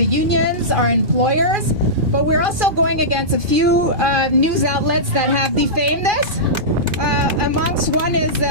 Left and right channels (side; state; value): left; late; 2.4 ms